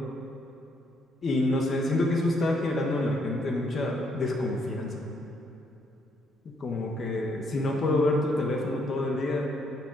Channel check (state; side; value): normal; both; correlation 0.72